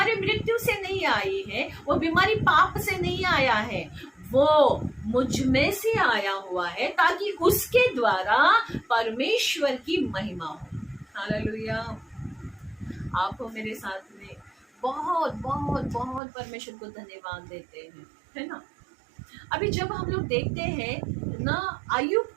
मृत्यु से नहीं आई है, वो बीमारी पाप से नहीं आया है, वो मुझ में से आया हुआ है ताकि उसके द्वारा परमेश्वर की महिमा हो। हालेलुया। आप मेरे साथ में बहुत बहुत बहुत परमेश्वर को धन्यवाद देते हैं, है ना। अभी जब हम लोग देखते हैं ना, आयुब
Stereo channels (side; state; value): left; drops out; at 16.2 s